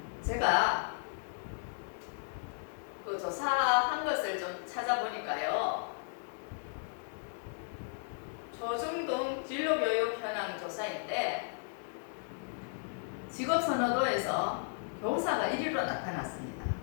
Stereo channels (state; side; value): silent; right; digital silence